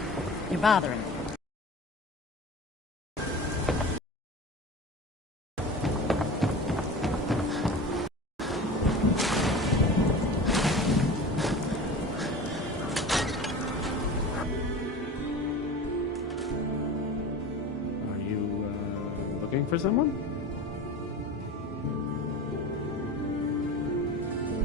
You're bothering me. Looking for someone?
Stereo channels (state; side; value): normal; both; correlation 0.34